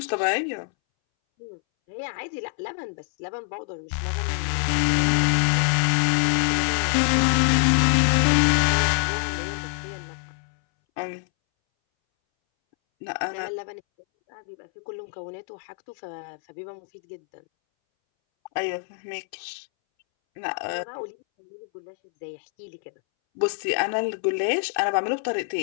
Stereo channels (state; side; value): silent; right; 62 dB below the other